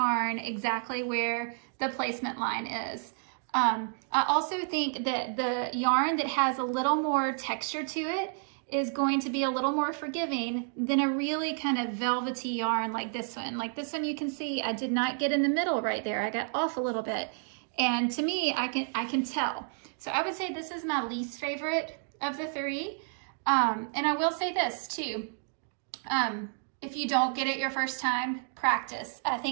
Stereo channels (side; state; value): left; silent; 57 dB below the other